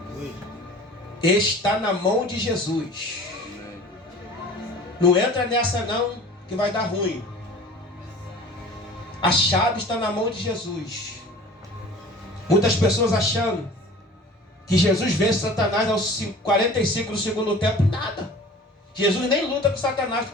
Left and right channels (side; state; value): both; normal; correlation 0.43